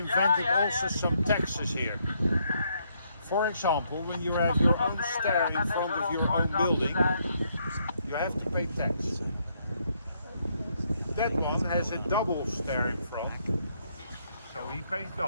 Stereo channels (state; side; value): inverted; both; correlation -0.74